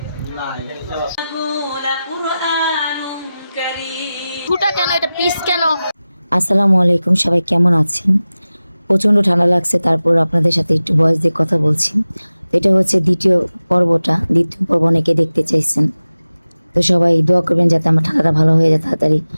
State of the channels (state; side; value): inverted; both; correlation -0.96